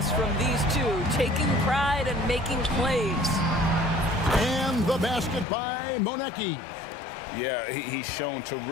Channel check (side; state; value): right; drops out; at 5.5 s